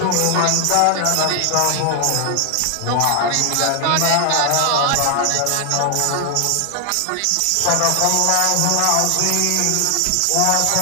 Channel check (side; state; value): both; different; correlation 0.00